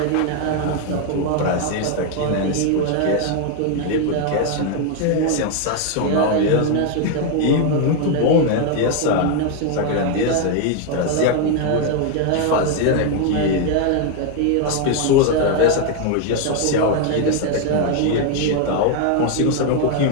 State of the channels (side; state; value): both; different; correlation 0.00